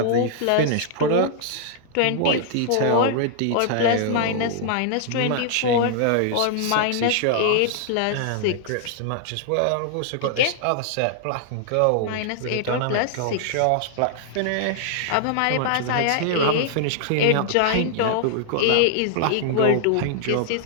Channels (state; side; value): different; both; correlation -0.01